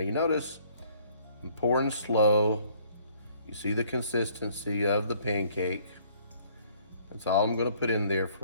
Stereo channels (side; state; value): both; inverted; correlation -0.61